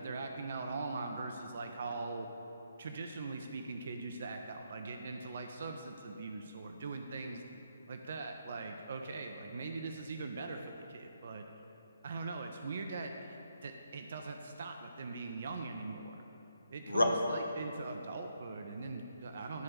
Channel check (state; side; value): inverted; both; correlation -0.79